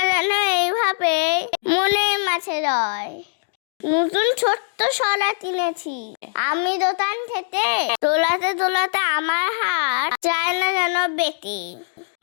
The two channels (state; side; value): silent; right; digital silence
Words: এইভাবে মনের মাঝে রয়। নতুন ছোট্ট শলা কিনেছি আমি দোকান থেকে, দোলাতে দোলাতে আমার হাত যায় না যেন বেঁকে।